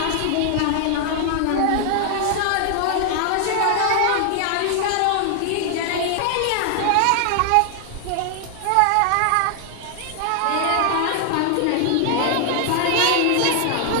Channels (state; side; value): different; both; correlation 0.00